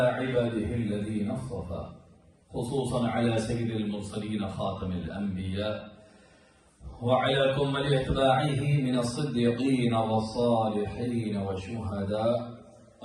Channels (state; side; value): identical; both; correlation 1.00